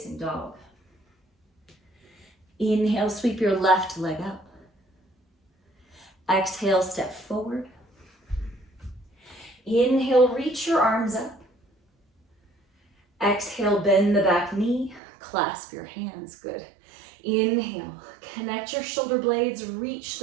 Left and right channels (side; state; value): left; drops out; at 15.0 s